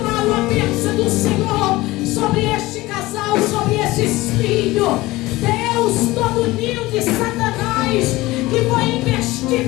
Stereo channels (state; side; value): quieter; right; 19.4 dB